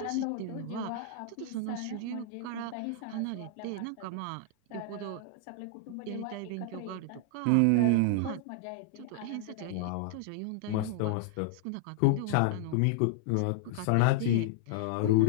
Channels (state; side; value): different; both; correlation -0.01